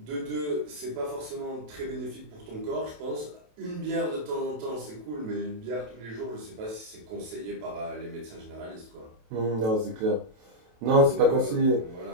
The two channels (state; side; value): late; left; 27 ms